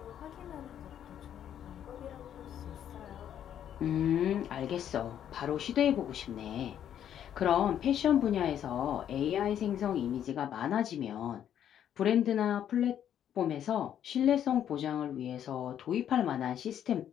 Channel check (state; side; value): quieter; right; 9.9 dB